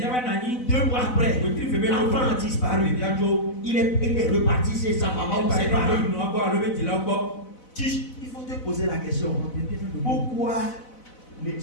2 mois après, l'enfant a disparu. Il est reparti chez sa maman ou ses parents. Il faut te poser la question. Pourquoi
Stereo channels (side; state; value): right; late; 4.0 ms